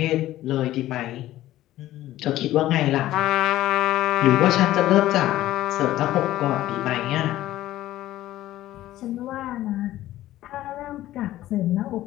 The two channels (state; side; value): quieter; right; 14.7 dB